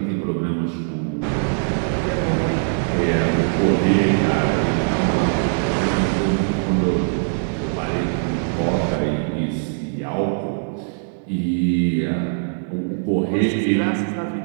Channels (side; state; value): left; silent; digital silence